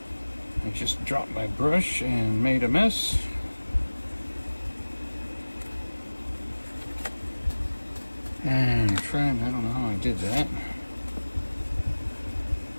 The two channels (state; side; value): inverted; both; correlation -1.00